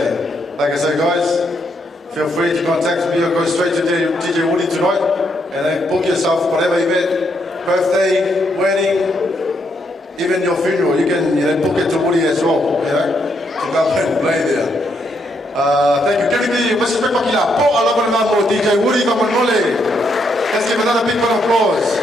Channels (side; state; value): both; normal; correlation 0.77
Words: Like I said, guys, feel free to contact me or go straight to DJ Woody tonight, and then book yourself whatever event, birthday, wedding, even your funeral. You can book it to Woody as well. To come and play there. Thank you. Let's give another big round of applause.